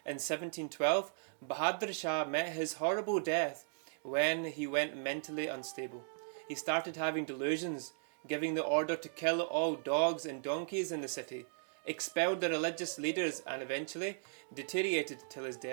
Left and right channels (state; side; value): silent; left; digital silence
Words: in 1712, Bahadur Shah met his horrible death when he went mentally unstable. He started having delusions, giving the order to kill all dogs and donkeys in the city, expelled the religious leaders, and eventually deteriorated till his